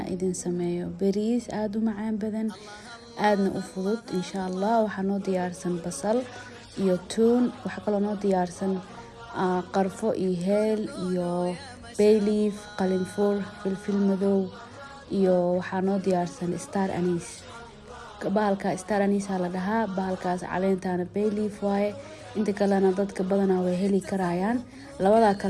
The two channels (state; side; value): identical; both; correlation 1.00